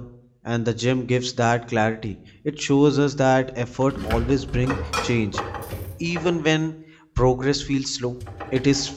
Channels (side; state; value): both; identical; correlation 1.00